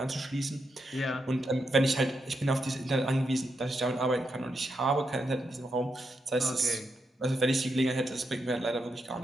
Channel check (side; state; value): both; normal; correlation 0.83